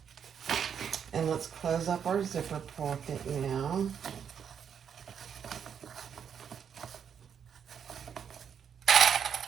And let's close up our zipper pocket now.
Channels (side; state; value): left; quieter; 7.8 dB